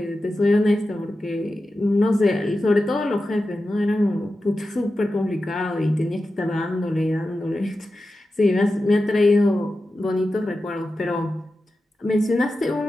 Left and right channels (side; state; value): both; normal; correlation 0.92